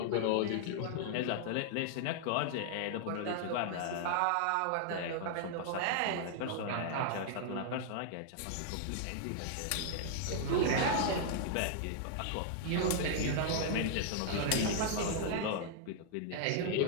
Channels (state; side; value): different; both; correlation -0.01